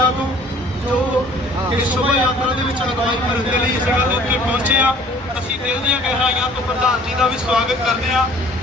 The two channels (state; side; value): normal; both; correlation 0.53